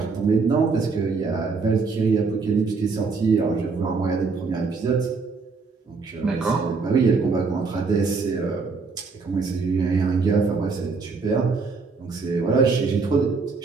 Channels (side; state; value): left; quieter; 4.5 dB